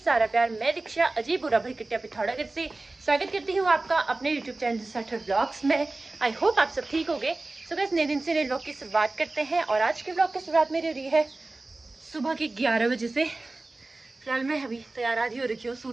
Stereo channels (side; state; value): left; quieter; 3.1 dB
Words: सारा प्यार। मैं दीक्षा अजीब बुरा भरी किट्टिया पिथौरागढ़ से स्वागत करती हूँ आपका अपने यूट्यूब चैनल साठर ब्लॉग्स में। आई होप आप सब ठीक होंगे। सो गाइस, नए दिन से नए ब्लॉग की शुरुआत करते हैं और आज के ब्लॉग की शुरुआत मेरी हो रही है सुबह के 11 बजे से। फिलहाल मैं अभी तैयार आधी हो रखी हूँ